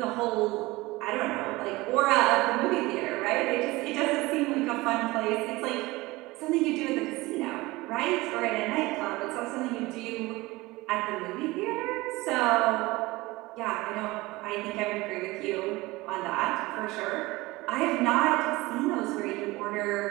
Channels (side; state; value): left; quieter; 21.0 dB